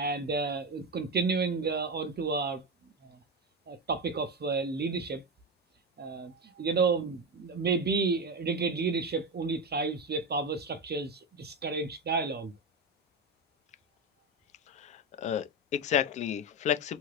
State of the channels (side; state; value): both; normal; correlation 0.15